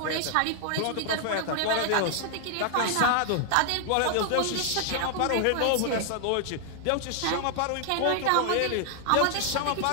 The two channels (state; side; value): different; both; correlation 0.00